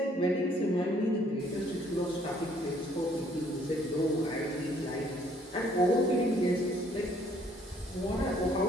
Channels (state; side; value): normal; both; correlation 0.63